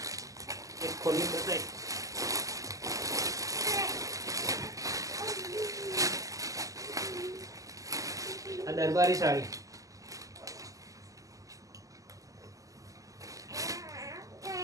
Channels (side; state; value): left; late; 0.16 ms